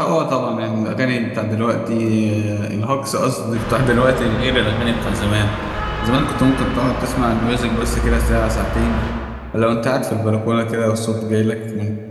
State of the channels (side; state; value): both; identical; correlation 1.00